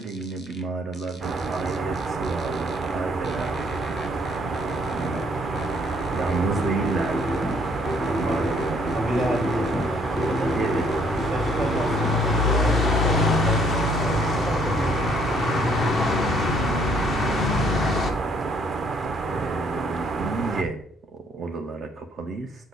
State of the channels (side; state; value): both; normal; correlation 0.65